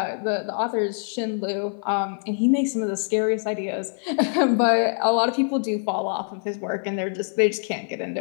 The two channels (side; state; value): right; silent; 58 dB below the other